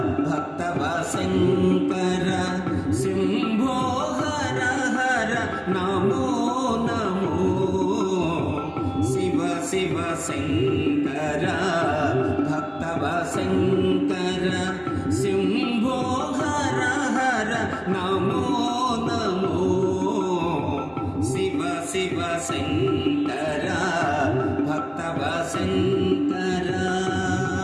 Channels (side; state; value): both; identical; correlation 1.00